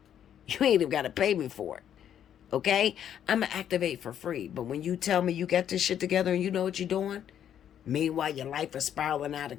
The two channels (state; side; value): quieter; right; 9.7 dB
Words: You ain't even got to pay me for it. Okay? I'm going to activate for free. But when you tell me you got this shit together and you know what you're doing, meanwhile, your life is spiraling out of